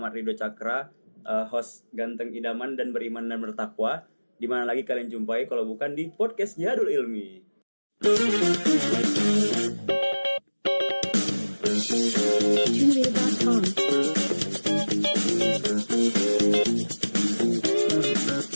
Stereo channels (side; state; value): both; inverted; correlation -1.00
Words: Ridho Cakra, host ganteng idaman dan beriman dan bertakwa. Di mana lagi kalian jumpai kalau bukan di podcast Jihadul Ilmi.